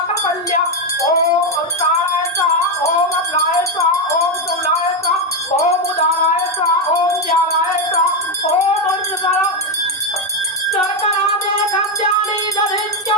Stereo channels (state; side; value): normal; both; correlation 0.06